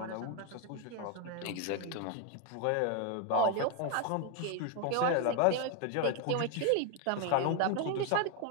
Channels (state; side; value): different; both; correlation 0.01